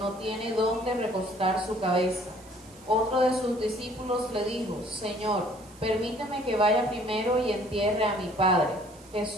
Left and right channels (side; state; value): right; noise; hiss, 24 dB below the sound